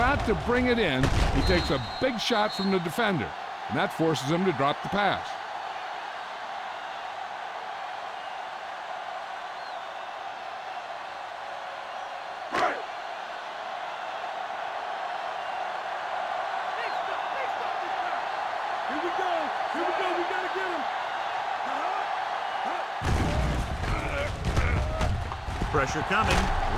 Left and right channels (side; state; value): both; identical; correlation 1.00